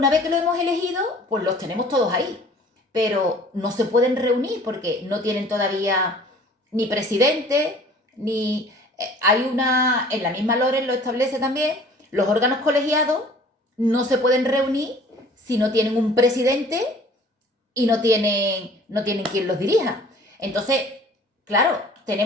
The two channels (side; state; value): both; normal; correlation 0.50